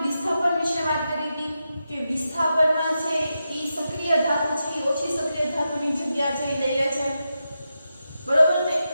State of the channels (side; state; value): both; inverted; correlation -0.88